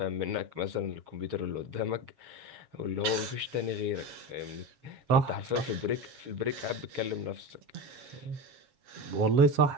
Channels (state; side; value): late; left; 7.3 ms